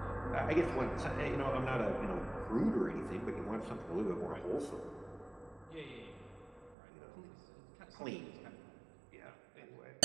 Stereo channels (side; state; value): left; drops out; at 6.8 s